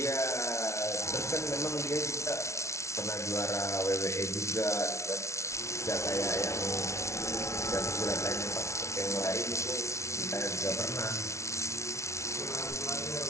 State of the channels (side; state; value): right; late; 0.13 ms